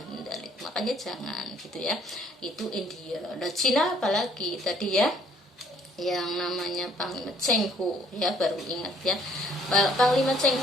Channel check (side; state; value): both; normal; correlation 0.63